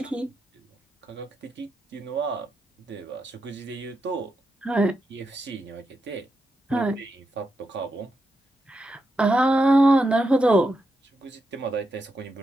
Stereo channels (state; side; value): normal; both; correlation 0.85